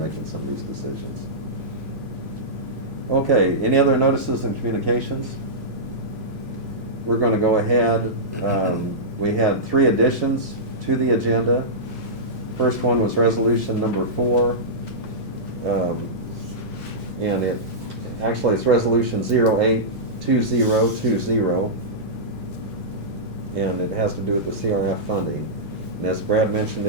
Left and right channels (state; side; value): normal; both; correlation -0.15